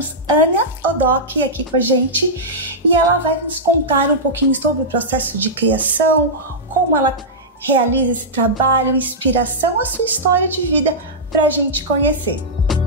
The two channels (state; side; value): normal; both; correlation -0.11